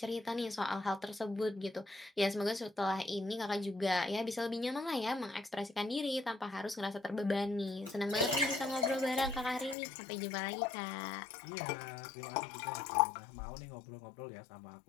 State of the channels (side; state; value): right; drops out; at 9.8 s